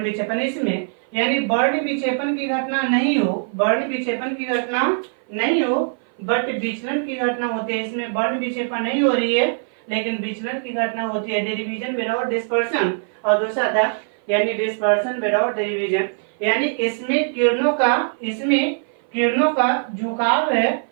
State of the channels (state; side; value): silent; left; 57 dB below the other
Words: विक्षेपण। इसमें यानी वर्ण विक्षेपण की घटना नहीं हो, वर्ण विक्षेपण की घटना नहीं हो बट विचलन की घटना होती है। इसमें वर्ण विक्षेपण नहीं हो रही है लेकिन विचलन की घटना होती है, डिवीजन विदाउट डिस्पर्सन। और दूसरा था यानी डिस्पर्सन विदाउट डिवीजन, यानी इसमें किरणों का झुकाव है,